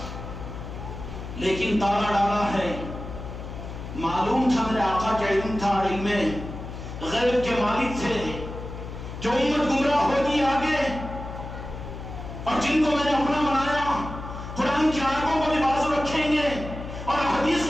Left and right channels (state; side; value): noise; left; hum, 9 dB below the sound